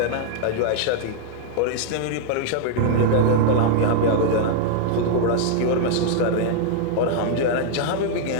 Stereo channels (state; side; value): different; both; correlation -0.01